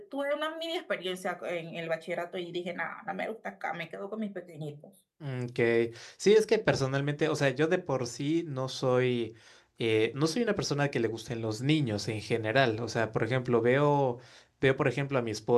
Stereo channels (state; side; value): identical; both; correlation 1.00